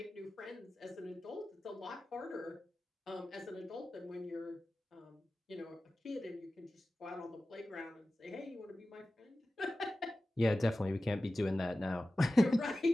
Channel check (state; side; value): normal; both; correlation 0.95